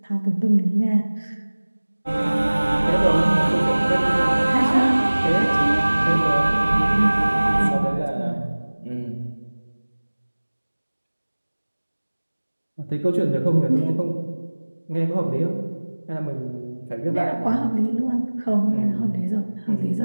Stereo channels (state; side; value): inverted; both; correlation -1.00